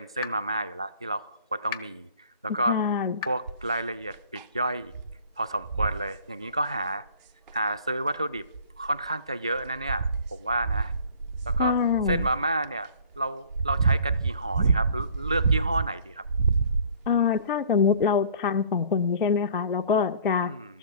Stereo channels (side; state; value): both; inverted; correlation -0.51